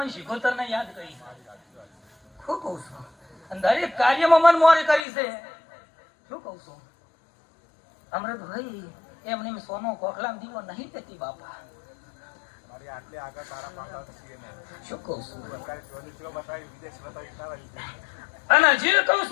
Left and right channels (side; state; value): right; drops out; at 5.1 s